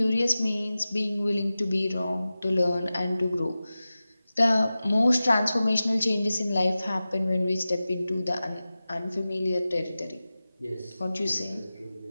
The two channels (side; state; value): both; inverted; correlation -0.95